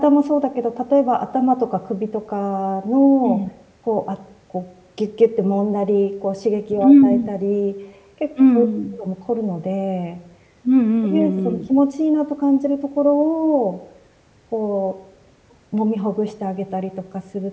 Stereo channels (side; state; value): both; identical; correlation 1.00